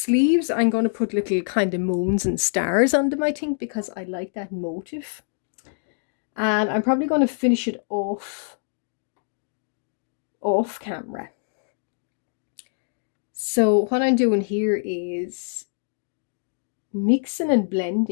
I'm going to put little kind of moons and stars on them, I think, because I like that motif. And I'm probably going to finish it off camera. So what I'm doing here is mixing and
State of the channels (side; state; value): right; silent; digital silence